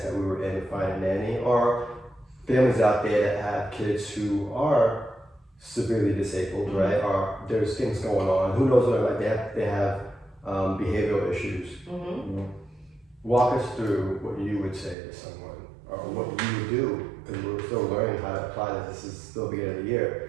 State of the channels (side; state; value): left; drops out; at 15.0 s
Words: that we were in to find a nanny, or families out there that have kids who are severely disabled, right? Or there's things going on. Who knows what, like they have behavioral issues. Walk us through what you would say to someone, or what you would do, because we're still learning how to apply this. This is still the beginning of the